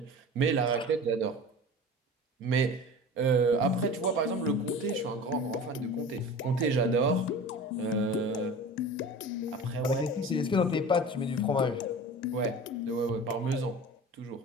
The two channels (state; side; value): normal; both; correlation 0.36